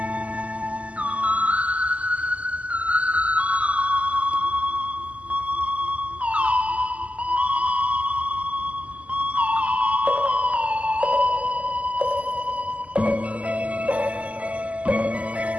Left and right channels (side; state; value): left; late; 0.068 ms